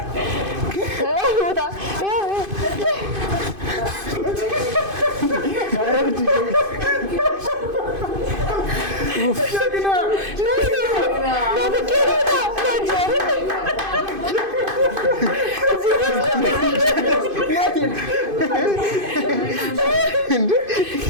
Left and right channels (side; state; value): left; late; 2.5 ms